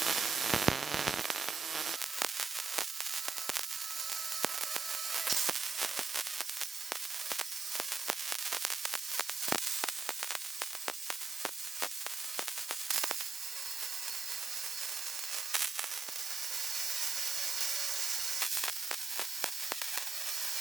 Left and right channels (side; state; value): left; quieter; 4.5 dB